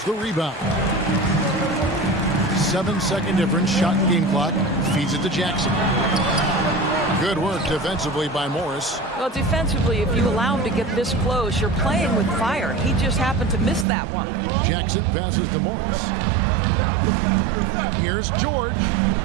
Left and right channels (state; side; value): drops out; left; at 13.9 s